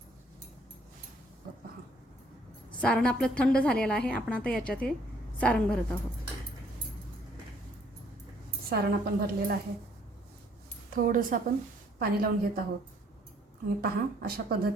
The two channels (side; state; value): both; normal; correlation 0.63